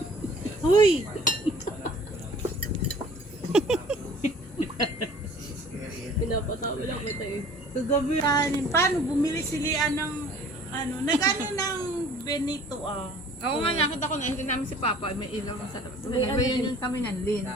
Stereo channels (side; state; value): both; normal; correlation 0.50